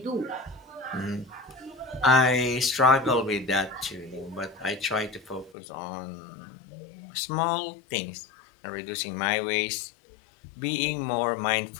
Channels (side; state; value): right; drops out; at 5.6 s